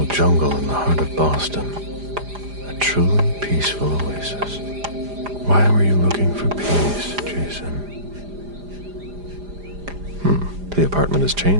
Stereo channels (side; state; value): left; late; 4.9 ms